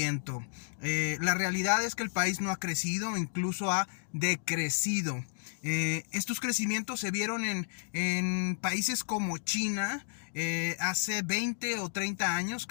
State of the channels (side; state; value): right; silent; digital silence